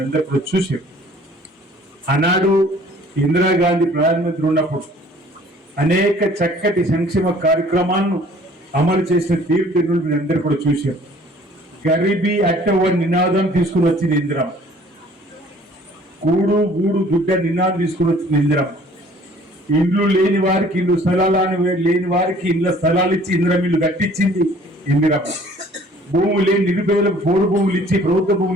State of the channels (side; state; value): both; normal; correlation 0.54